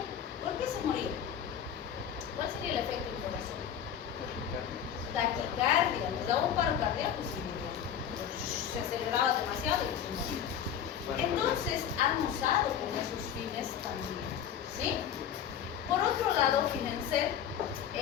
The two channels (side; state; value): right; quieter; 9.1 dB